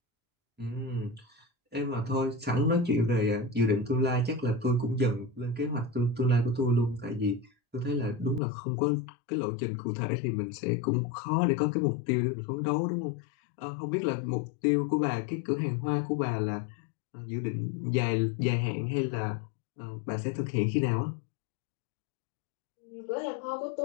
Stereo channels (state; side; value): drops out; right; at 8.4 s